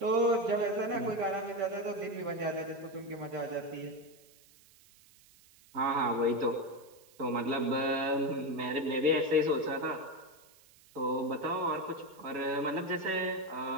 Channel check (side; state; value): right; noise; hiss, 27 dB below the sound